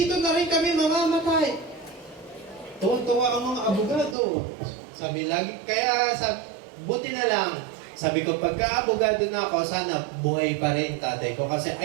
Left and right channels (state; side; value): drops out; left; at 4.2 s